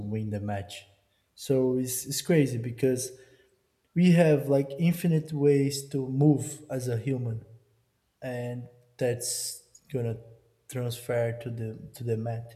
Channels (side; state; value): both; identical; correlation 1.00